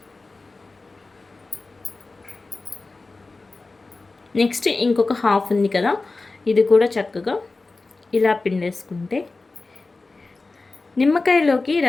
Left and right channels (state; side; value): quieter; right; 3.6 dB